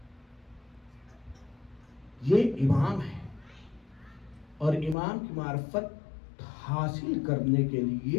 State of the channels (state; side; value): drops out; right; at 5.0 s